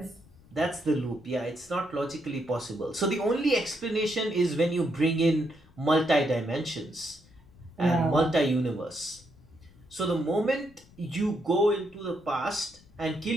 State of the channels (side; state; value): left; noise; rumble, 26 dB below the sound